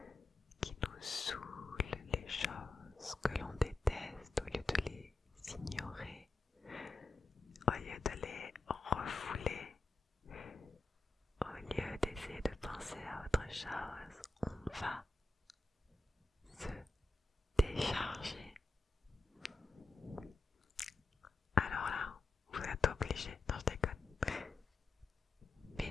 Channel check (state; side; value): quieter; right; 3.3 dB